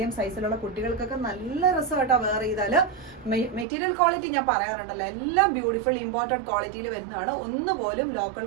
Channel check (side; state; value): left; drops out; at 3.7 s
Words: സൈസിലുള്ള കുട്ടികൾക്കൊക്കെ നല്ല രസമായിട്ടാ വെയർ ചെയ്താല്. മെറ്റീരിയൽ ക്വാളിറ്റി ഞാൻ പറയാറുണ്ടല്ലോ, എല്ലാം ബ്യൂട്ടിഫുൾ ഇമ്പോർട്ടഡ് ക്വാളിറ്റിയിൽ വരുന്നതാണ്. ഒന്നുപോലും ലോക്കൽ